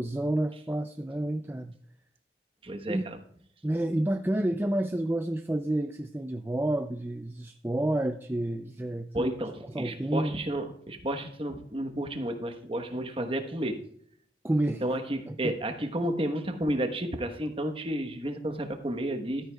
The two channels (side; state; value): both; normal; correlation 0.83